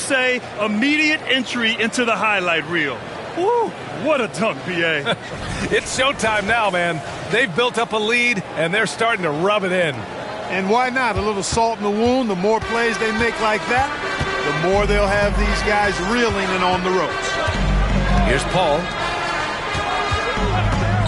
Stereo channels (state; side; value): identical; both; correlation 1.00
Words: immediate entry into the highlight reel? Woo, what a dunk, B.A. It's showtime now, man. They've built up a lead, and they're starting to rub it in. And why not? A little salt in the wound. The more plays they make like that, the more they'll have these guys reeling and on the ropes. Here's Paul.